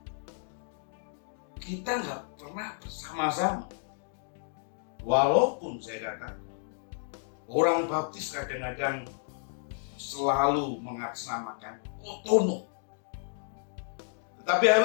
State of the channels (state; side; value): silent; right; digital silence